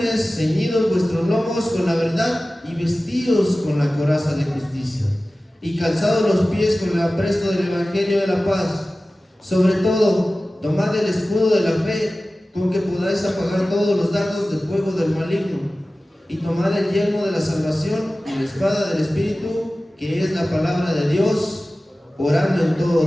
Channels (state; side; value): normal; both; correlation 0.96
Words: ceñidos vuestros lomos con la verdad, y vestidos con la coraza de justicia, y calzados los pies con el apresto del evangelio de la paz. Sobre todo, tomad el escudo de la fe, con que podáis apagar todos los dardos de fuego del maligno, y tomad el yelmo de la salvación y la espada del Espíritu, que es la palabra de Dios, orando en